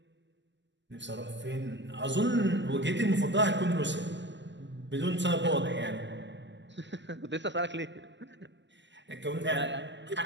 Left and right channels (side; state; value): left; late; 0.53 ms